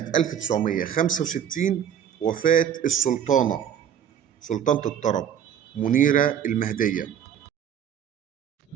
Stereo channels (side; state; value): left; quieter; 9.1 dB